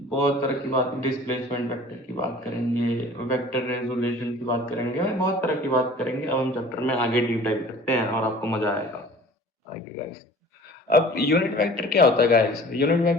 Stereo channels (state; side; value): normal; both; correlation 0.46